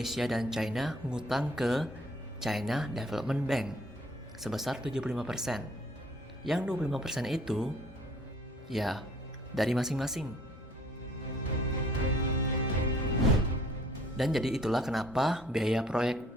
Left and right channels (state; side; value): normal; both; correlation 0.57